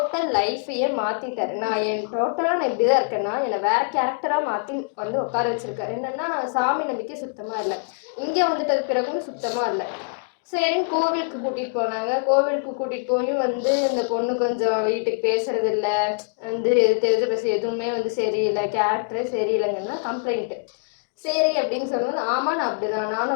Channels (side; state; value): right; silent; digital silence